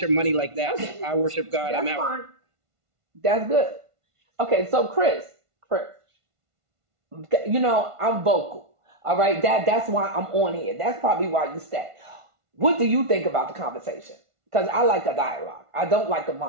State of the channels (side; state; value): left; late; 1.5 ms